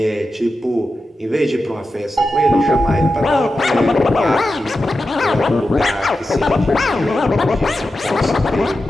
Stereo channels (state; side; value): normal; both; correlation 0.91